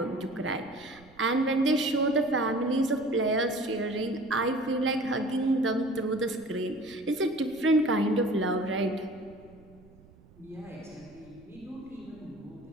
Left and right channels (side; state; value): right; noise; rumble, 25 dB below the sound